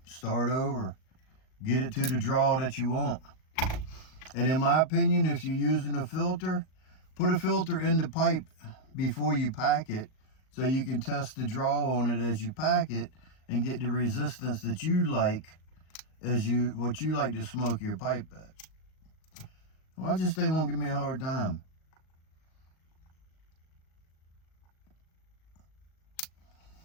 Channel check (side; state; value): right; late; 38 ms